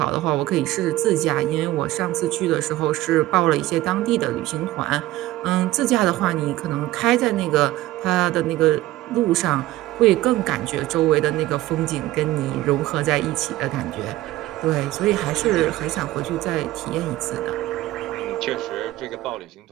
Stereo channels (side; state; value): left; quieter; 16.3 dB